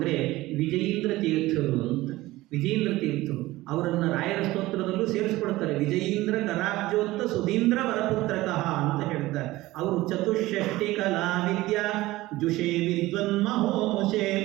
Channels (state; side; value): quieter; left; 18.1 dB